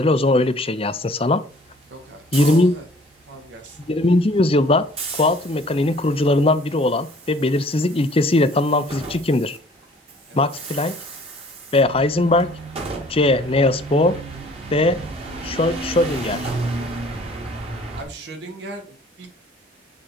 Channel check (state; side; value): normal; both; correlation 0.54